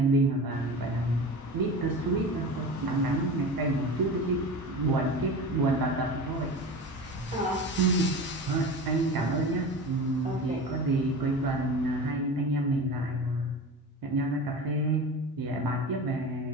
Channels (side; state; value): both; normal; correlation 0.31